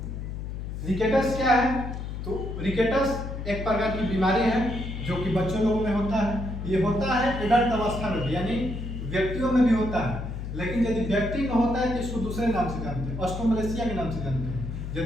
रिकेटस क्या है? तो रिकेटस एक प्रकार की बीमारी है जो कि बच्चों लोगों में होता है। ये होता है एडल्ट अवस्था में भी, यानी व्यक्तियों में भी होता है, लेकिन यदि व्यक्ति में होता है तो इसको दूसरे नाम से जानते हैं, ऑस्ट्रोमलेशिया के नाम से जानते हैं।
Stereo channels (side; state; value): left; noise; hum, 6 dB below the sound